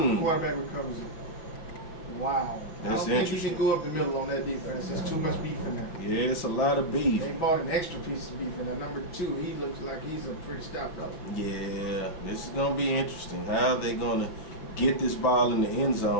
quarterback recovers it. Wow. That's I don't think you can go up the middle on that defense. There's too much beef in there. Yeah, it's a lot of beef. They bought an extra piece of beef in there. Number 2, he looks like he's a pretty stout fellow. Yeah, this is going to be interesting. How are they going to get this ball in the end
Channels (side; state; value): right; late; 6.1 ms